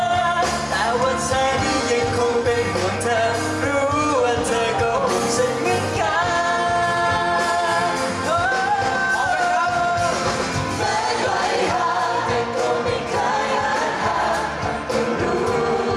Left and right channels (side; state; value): both; identical; correlation 1.00